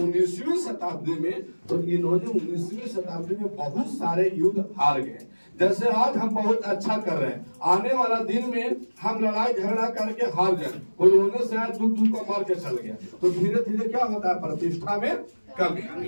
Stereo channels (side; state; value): both; inverted; correlation -1.00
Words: शताब्दी में, तो इन्होंने 19वीं शताब्दी में बहुत सारे युद्ध हार गए। जैसे आज हम बहुत अच्छा कर रहे हैं, आने वाला दिन में हम लड़ाई झगड़ा करके हार जाए, कोई होने से आज दूर को मार के चल गया, तो धीरे धीरे क्या होता है, प्रतिष्ठा में कमी।